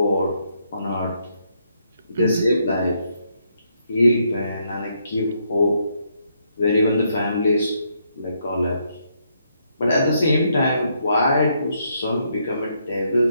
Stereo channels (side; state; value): both; inverted; correlation -0.75